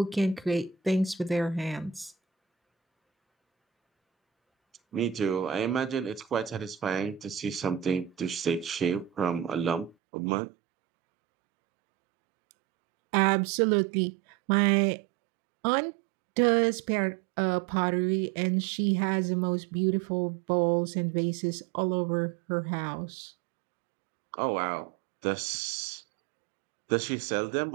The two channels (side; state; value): left; drops out; at 10.0 s